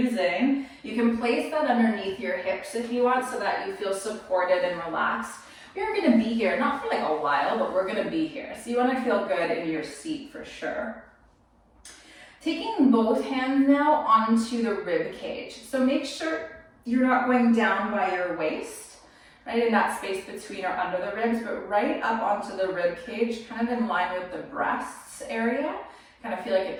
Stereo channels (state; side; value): identical; both; correlation 1.00